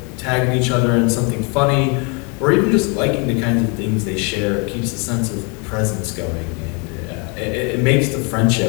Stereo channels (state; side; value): quieter; right; 33.4 dB